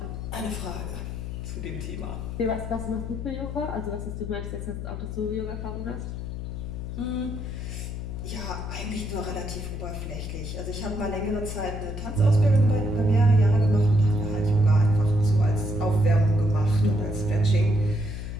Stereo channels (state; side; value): noise; left; hum, 6 dB below the sound